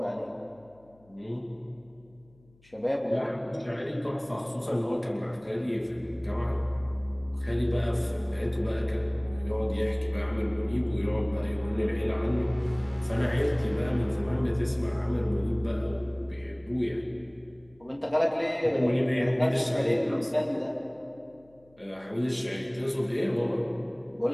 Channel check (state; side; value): noise; left; hum, 30 dB below the sound